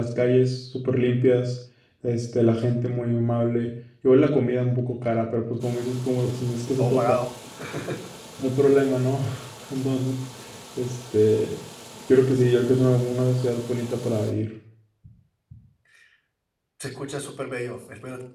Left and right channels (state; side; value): identical; both; correlation 1.00